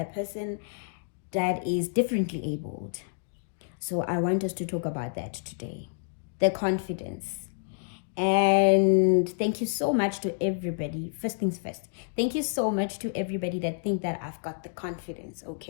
person that is differently abled. So I want us to talk about that today, the confidence. And thank you so much to everybody. First things first, thank you so much to everybody that think that I've got the confidence.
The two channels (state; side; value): silent; right; digital silence